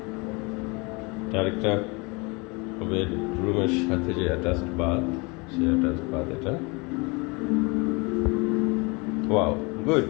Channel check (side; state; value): right; quieter; 28.2 dB